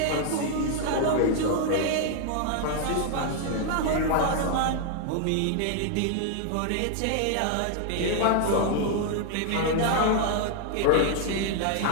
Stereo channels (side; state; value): both; different; correlation -0.01